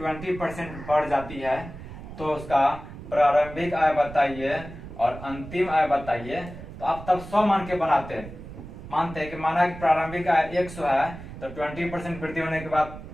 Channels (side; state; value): right; noise; rumble, 13 dB below the sound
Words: बढ़ जाती है तो उसका प्रारंभिक आय बताइए और अंतिम आय बताइए, तो आप तब 100 मान के बनाते हैं। मानते हैं कि माना कि प्रारंभिक आय 100 है तो 20% वृद्धि होने के बाद